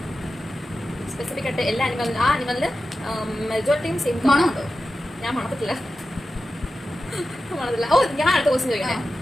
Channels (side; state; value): both; normal; correlation 0.92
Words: സ്പെസിഫിക് ആയിട്ട് എല്ലാ ആനിമലിനും ആ ആനിമലിന് മെജോറിറ്റിയും സെയിം മണമുണ്ടോ? ഞാൻ മണത്തില്ല. ഓ, ഞാൻ അടുത്ത ക്വസ്റ്റ്യൻ ചോദിക്കണേ.